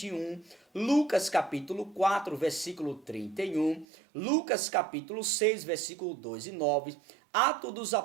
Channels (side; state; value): left; drops out; at 3.9 s